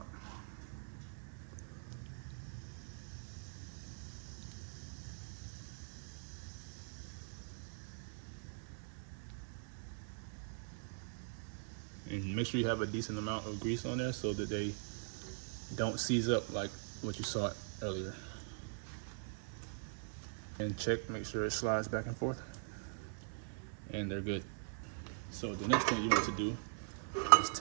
And make sure you have a decent amount of grease on there so that they don't seize up like what you saw earlier. And check, make sure it slides back and forth. And they're good. So the next thing you want to do is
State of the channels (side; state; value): left; silent; digital silence